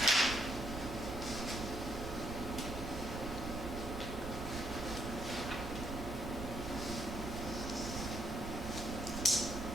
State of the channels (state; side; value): noise; right; rumble, 7 dB below the sound